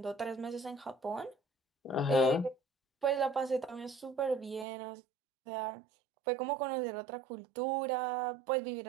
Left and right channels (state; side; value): drops out; left; at 4.7 s